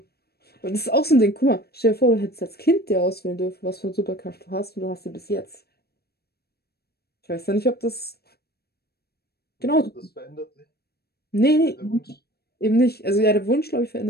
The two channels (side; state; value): right; late; 0.46 ms